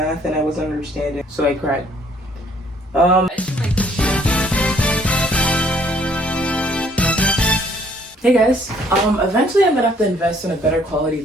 and I wasn't understanding, so I cried. Hey guys, eventually I'm gonna have to invest in a better quality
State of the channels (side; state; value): both; normal; correlation 0.62